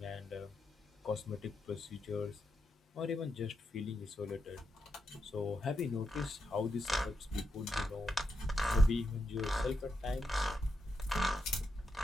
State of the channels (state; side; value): normal; both; correlation 0.84